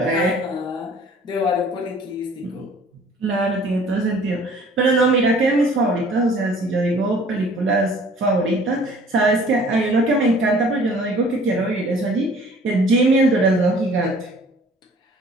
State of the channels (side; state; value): both; normal; correlation 0.52